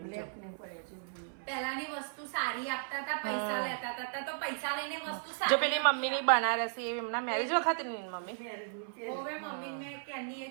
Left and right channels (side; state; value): left; silent; 54 dB below the other